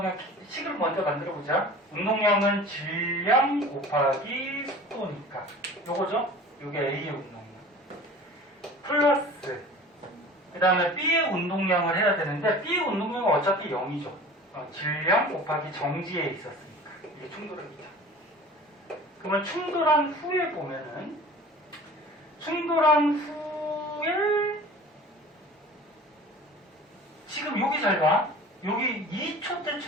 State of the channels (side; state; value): both; normal; correlation 0.41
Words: 식을 먼저 만들어 보자. 운동량은 질량 곱하기 속도니까. 요거죠? 요게 A의 운동량. 플러스 그 다음에 B의 운동량을 해야 되는데 B의 운동량은 어차피 0이죠. 질량 곱하기 정지에 있었으니까 이게 충돌합니다. 그러면 충돌한 후에 보면은 충돌한 후에 지금 여기 잘 봐. 여기 2초 때